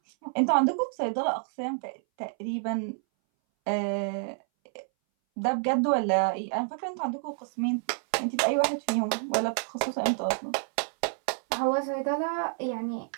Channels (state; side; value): silent; left; 59 dB below the other